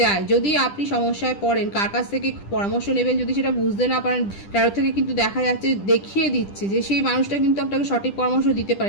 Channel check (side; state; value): right; late; 10 ms